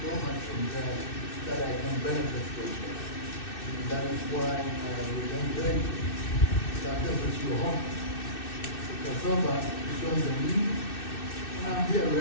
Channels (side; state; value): right; late; 2.6 ms